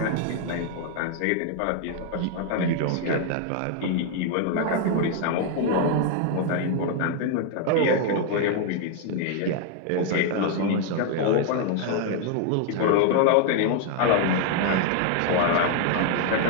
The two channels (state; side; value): different; both; correlation 0.01